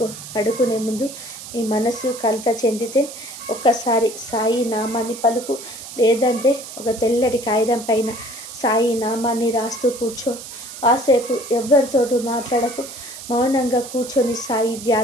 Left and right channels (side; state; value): right; noise; hiss, 12 dB below the sound